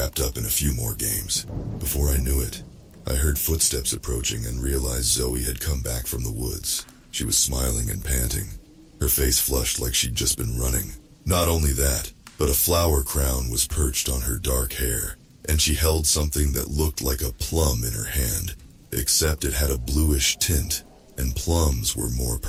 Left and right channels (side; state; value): both; identical; correlation 1.00